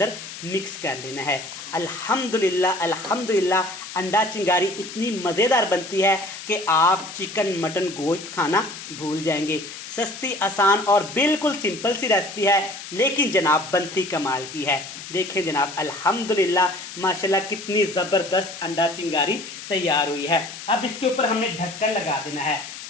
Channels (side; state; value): left; noise; hiss, 12 dB below the sound